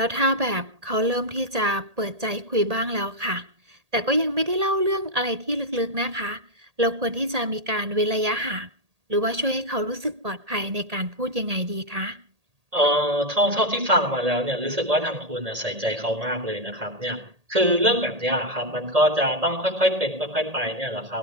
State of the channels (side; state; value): left; late; 1.8 ms